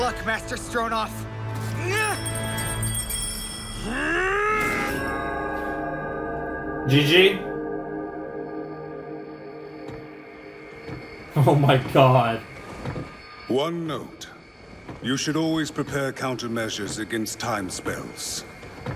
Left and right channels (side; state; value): both; identical; correlation 1.00